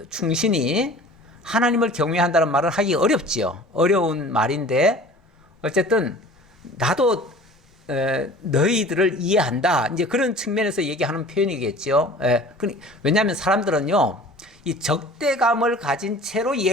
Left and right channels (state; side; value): normal; both; correlation 0.44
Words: 충신이 하나님을 경외한다는 말을 하기 어렵지요. 어려운 말인데 어쨌든 나도 너희들을 이해한다. 이제 그런 측면에서 얘기하는 표현이겠죠. 왜냐하면 사람들은요, 이 적대감을 가진 채로